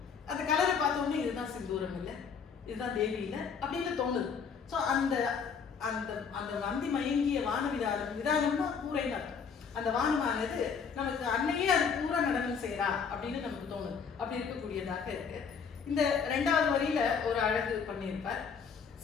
அந்த கலரை பார்த்த உடனே இதுதான் சிந்தூரம் இல்லை, இதுதான் தேவி இல்லை அப்படின்னு தோணுது. ஸோ அந்த அந்த அந்த வந்தி மயங்கிய வான விதானம்னா பூரைன்னு அர்த்தம். அந்த வானமானது நமக்கு அன்னையே அது பூரா நடனம் செய்யறா அப்படின்னு நமக்கு தோணுது. அப்படி இருக்கக்கூடியதாக இருக்கு. இந்த 2வது வரியில ஒரு அழகு பண்ணியிருப்பார்.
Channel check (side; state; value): right; quieter; 6.3 dB